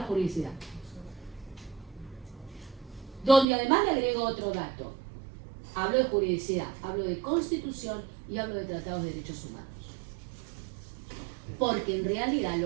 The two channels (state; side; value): drops out; left; at 3.5 s